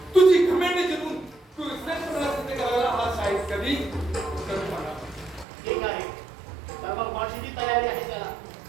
तुझी घमेंड जिंकून तू इस्लामला सिद्ध करायला हा शाहीर कधी कमी होणार. ठीक आहे, तर मग माझी जी तयारी आहे त्याला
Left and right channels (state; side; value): drops out; left; at 5.5 s